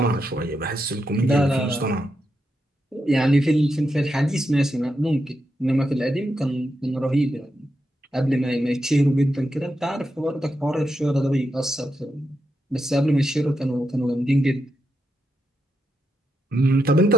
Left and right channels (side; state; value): both; normal; correlation 0.85